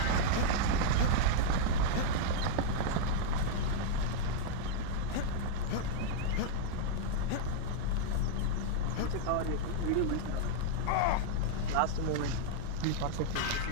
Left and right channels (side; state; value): both; different; correlation -0.01